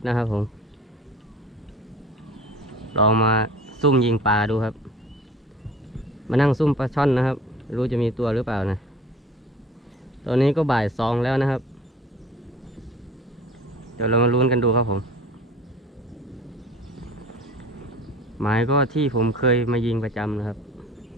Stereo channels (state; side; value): normal; both; correlation 0.45